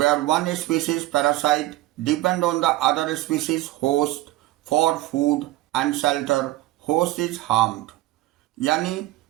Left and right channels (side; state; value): left; quieter; 16.9 dB